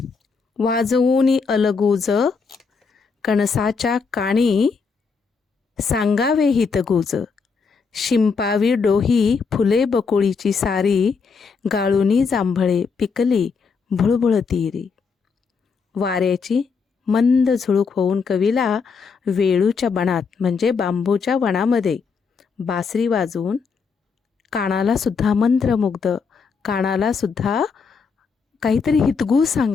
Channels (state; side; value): quieter; right; 5.3 dB